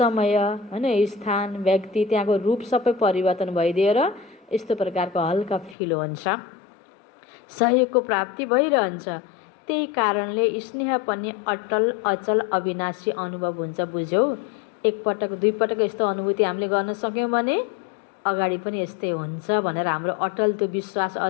हैन, स्थान, व्यक्ति, त्यहाँको रूप सबै परिवर्तन भइदिएर यस्तो प्रकारको हल्का फिल हुन्छ, सहयोगको प्राप्ति भइरहन्छ। त्यही कारणले स्नेह पनि अटल, अचल, अविनाशी अनुभव हुन्छ। बुझ्यौ, एकपटक दुईपटक यस्तो अनुभूति हामीले गर्न सक्यौँ भने अगाडि पनि यस्तै हुन्छ भनेर हाम्रो अटल त्यो विश्वास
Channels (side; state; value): right; drops out; at 5.8 s